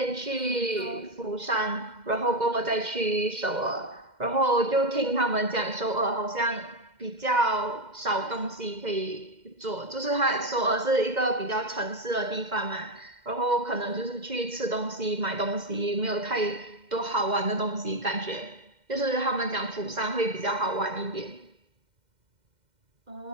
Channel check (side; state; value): left; late; 2.1 ms